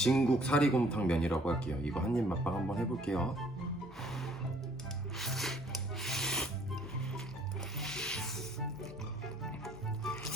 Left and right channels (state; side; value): normal; both; correlation 0.60